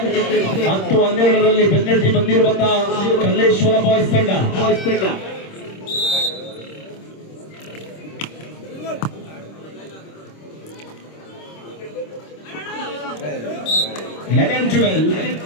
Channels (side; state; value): right; late; 26 ms